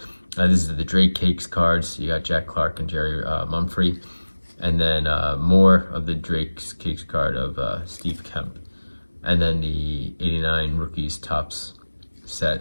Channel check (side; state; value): both; inverted; correlation -1.00